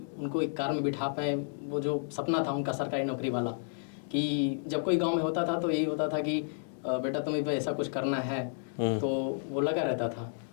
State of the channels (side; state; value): right; silent; digital silence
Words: उनको एक कार में बिठा पाएँ, वो जो सपना था उनका सरकारी नौकरी वाला, कि जब कोई गाँव में होता था तो यही होता था कि बेटा तुम्हें भी ऐसा कुछ करना है। तो वो लगा रहता था।